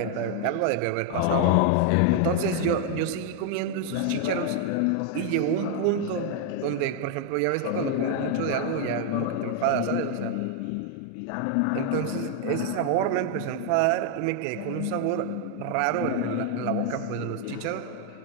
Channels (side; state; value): both; different; correlation 0.00